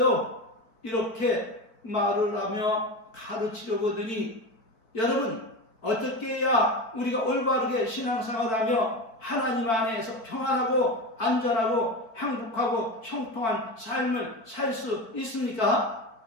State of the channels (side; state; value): right; late; 4.5 ms